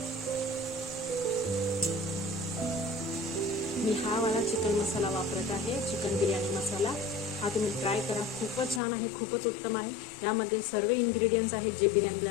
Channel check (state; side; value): drops out; right; at 8.8 s